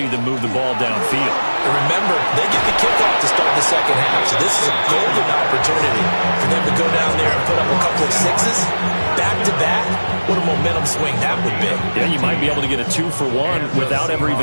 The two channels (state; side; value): inverted; both; correlation -1.00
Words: them move the ball downfield. And remember, they get the kickoff to start the 2nd half, so this is a golden opportunity for them to go down there and put up a couple of 6s back-to-back. What a momentum swing that would be. Yeah, you might be able to get a 2-for-1 without ever